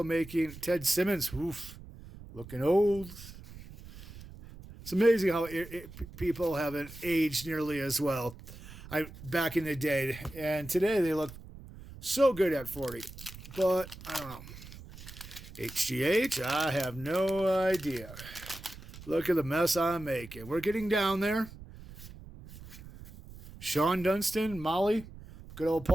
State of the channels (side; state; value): right; noise; rumble, 16 dB below the sound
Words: making. Ted Simmons. Oof, looking old. It's amazing how people haven't aged nearly as well. Back in the day, and today they look so good at 40. But I don't know. HGH, I have no idea. Look at the mess I'm making. We're getting down there. Sean Dunston, Molly, good old